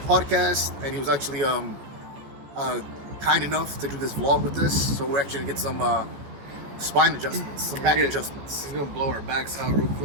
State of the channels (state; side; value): late; left; 14 ms